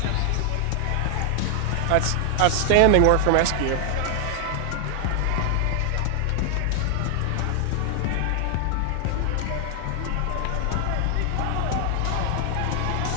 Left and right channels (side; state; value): both; different; correlation 0.00